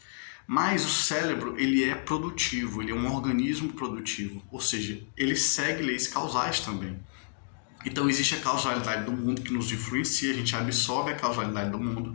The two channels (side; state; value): right; silent; digital silence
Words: Mas o cérebro, ele é produtivo, ele é um organismo produtivo, ou seja, ele segue leis causais também. Então existe a causalidade do mundo que nos influencia, a gente absorve a causalidade do